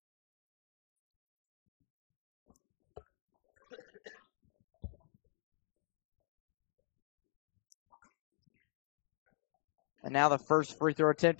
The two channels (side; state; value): right; silent; digital silence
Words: And now the first free throw attempt